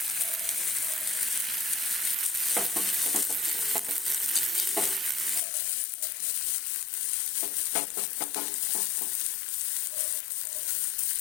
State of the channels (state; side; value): drops out; right; at 5.4 s